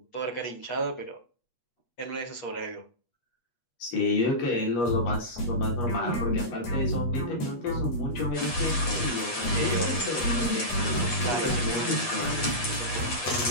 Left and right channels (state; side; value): late; right; 8.3 ms